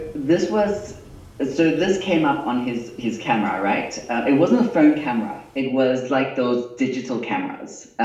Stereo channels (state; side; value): identical; both; correlation 1.00